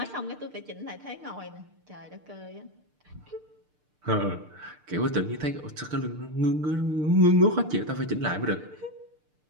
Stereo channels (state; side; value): late; left; 6.7 ms